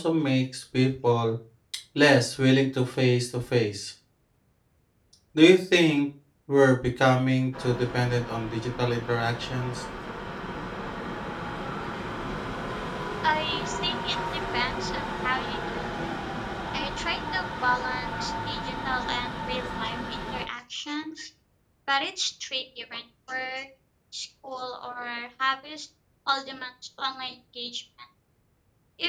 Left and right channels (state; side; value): identical; both; correlation 1.00